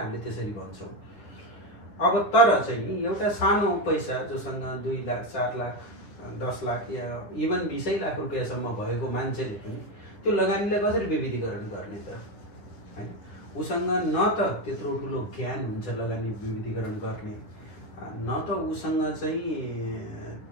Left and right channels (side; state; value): right; late; 10 ms